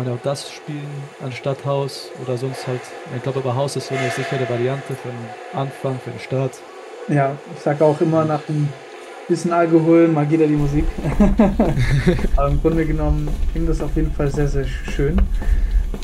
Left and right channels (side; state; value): both; identical; correlation 1.00